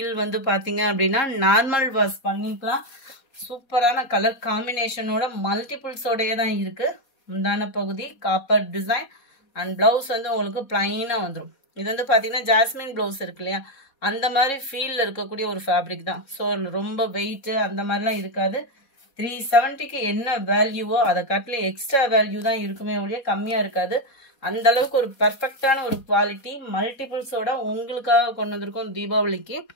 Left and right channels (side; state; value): right; late; 4.2 ms